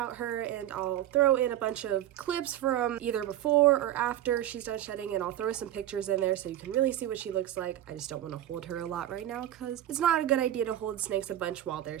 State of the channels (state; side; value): quieter; left; 12.6 dB